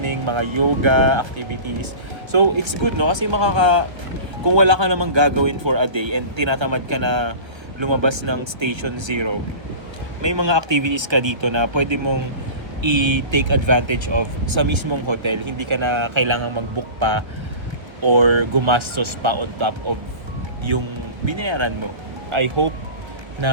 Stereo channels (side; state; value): left; late; 1.3 ms